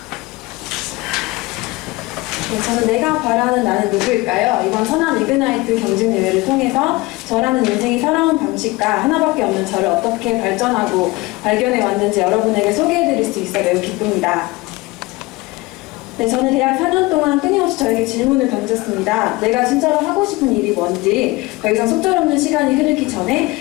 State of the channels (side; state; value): right; quieter; 22.0 dB